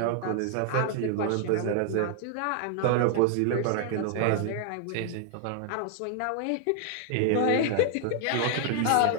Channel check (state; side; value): different; both; correlation 0.00